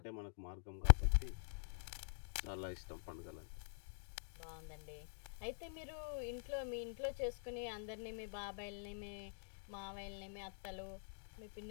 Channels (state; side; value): silent; right; digital silence